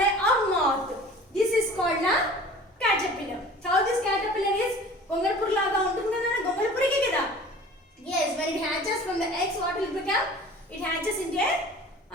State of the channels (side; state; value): both; normal; correlation 0.44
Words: or moth. This is called a caterpillar. How this caterpillar is? Gongalpur laga untundi Nana. Gongalpur ke kada? Yes, when it hatches from the eggs, what will it become? It hatches into a